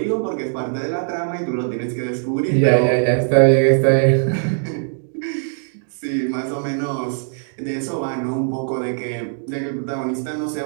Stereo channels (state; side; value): silent; left; digital silence